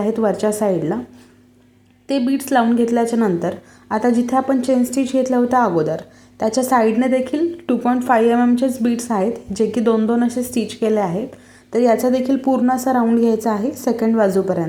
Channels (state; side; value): identical; both; correlation 1.00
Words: वरच्या साईडला. ते बीड्स लावून घेतल्याच्या नंतर आता जिथे आपण चेन स्टिच घेतलं होतं अगोदर त्याच्या साईडने देखील 2.5 mm बीड्स आहेत, जे की 2-2 असे स्टिच केले आहेत. तर याचा देखील पूर्ण असा राऊंड घ्यायचा आहे सेकंड